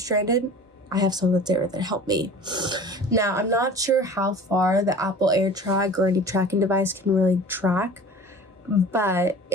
I have someone that's there that help me. Now, I'm not sure how far the Apple AirTag or any tracking device can really track, But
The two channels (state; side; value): normal; both; correlation 0.41